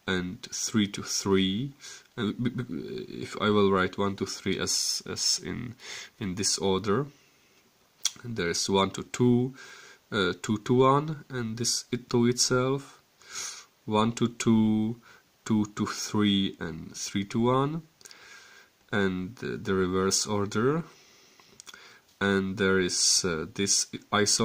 and 3 to 3. And if I will write 1 to 3 as in this order, and there is 1 to 2, 2 to 1, and this to itself, 1 to 2, 2 to 3, and 3 to 1, and the reverse order, and there is this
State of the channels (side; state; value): both; identical; correlation 1.00